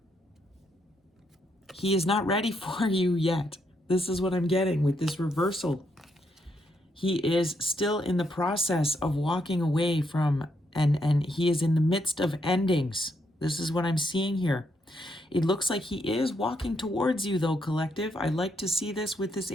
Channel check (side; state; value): both; normal; correlation 0.77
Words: He is not ready for you yet. This is what I'm getting with this reversal. He is still in the process of walking away from, and he is in the midst of endings. This is what I'm seeing here. It looks like he is walking towards you though, collective. I like to see this with this